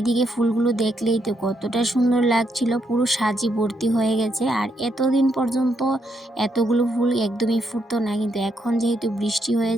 ফুলগুলো দেখলেই তো কতটা সুন্দর লাগছিল, পুরো সাজি ভর্তি হয়ে গেছে। আর এতদিন পর্যন্ত এতগুলো ফুল একদমই ফুটতো না, কিন্তু এখন যেহেতু বৃষ্টি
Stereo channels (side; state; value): both; normal; correlation 0.78